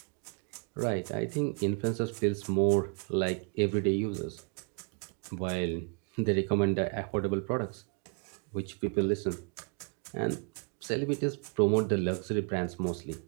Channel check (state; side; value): quieter; left; 39.8 dB